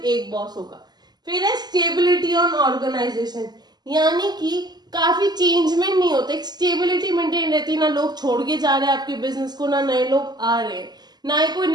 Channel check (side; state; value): left; late; 0.20 ms